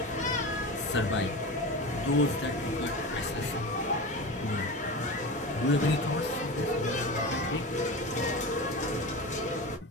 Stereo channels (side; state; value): both; normal; correlation 0.27